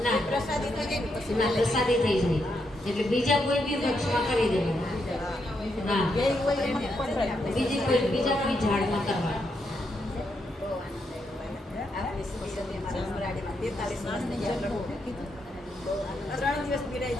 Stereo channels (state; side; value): normal; both; correlation 0.80